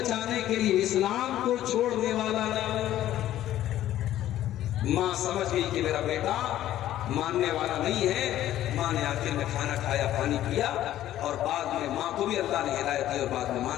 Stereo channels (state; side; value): quieter; right; 13.0 dB